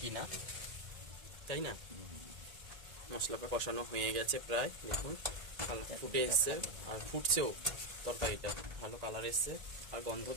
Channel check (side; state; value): left; late; 1.9 ms